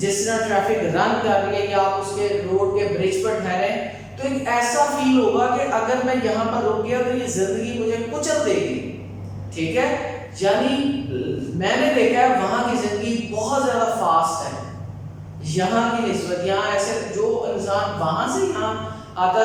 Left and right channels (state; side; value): identical; both; correlation 1.00